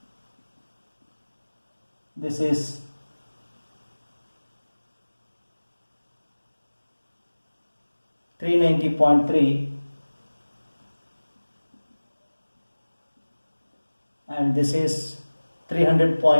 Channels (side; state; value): both; inverted; correlation -1.00